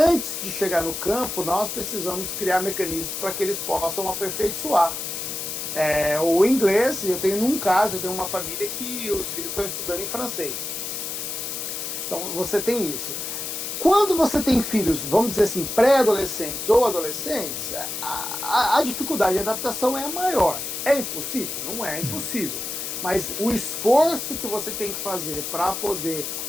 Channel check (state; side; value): noise; left; hiss, 5 dB below the sound